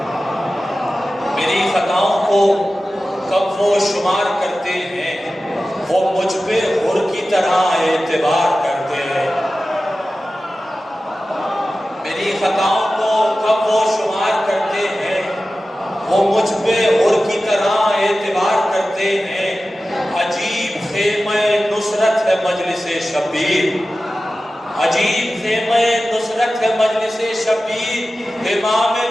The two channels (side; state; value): both; normal; correlation 0.95